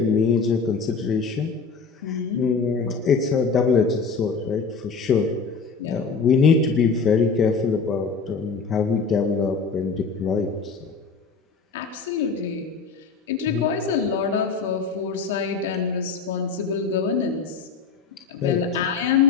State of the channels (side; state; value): right; quieter; 5.0 dB